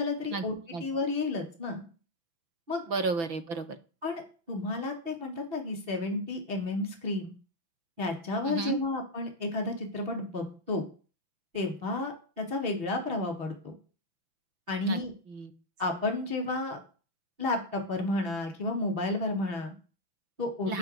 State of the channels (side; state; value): left; late; 6.0 ms